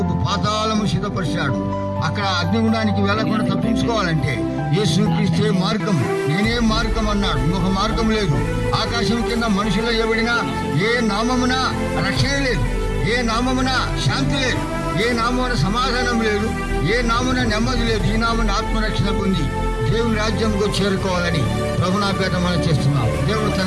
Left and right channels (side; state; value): both; identical; correlation 1.00